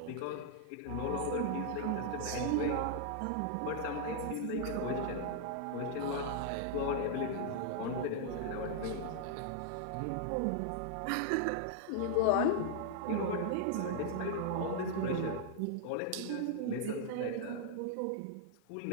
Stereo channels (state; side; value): different; both; correlation -0.01